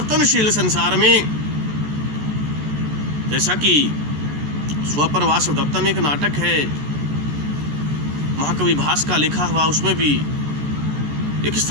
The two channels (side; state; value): left; late; 14 ms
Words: संसार में, जैसा कि स्वपर वासव दत्ता में एक नाटक है महाकवि भास का लिखा हुआ, उसमें भी एक